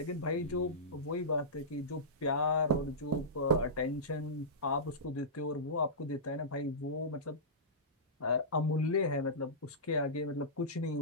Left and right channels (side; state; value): both; normal; correlation -0.17